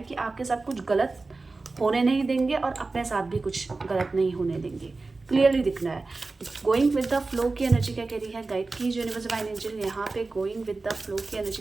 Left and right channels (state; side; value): quieter; left; 3.6 dB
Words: कि आपके साथ कुछ गलत होने नहीं देंगे और अपने साथ भी कुछ गलत नहीं होने देंगे। क्लियरली दिख रहा है। गोइंग विद द फ्लो की एनर्जी क्या कह रही है? गाइड की यूनिवर्स डिवाइन एंजल यहाँ पे गोइंग विद द फ्लो की एनर्जी